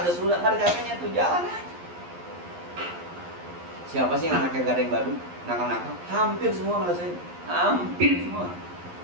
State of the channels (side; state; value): left; late; 11 ms